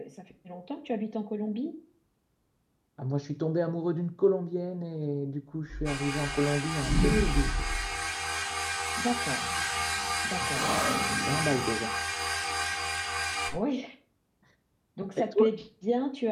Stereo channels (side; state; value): both; identical; correlation 1.00